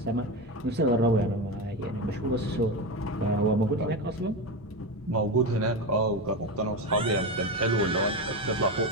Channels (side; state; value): both; normal; correlation 0.17